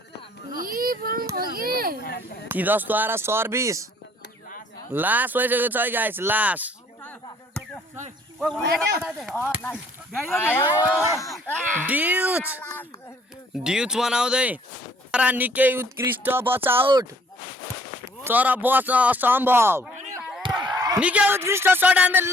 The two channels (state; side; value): normal; both; correlation 0.60